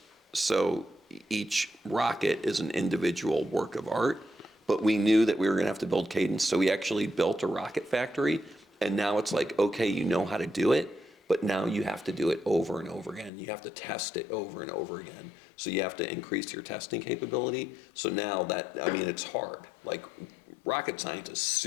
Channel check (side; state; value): right; drops out; at 13.3 s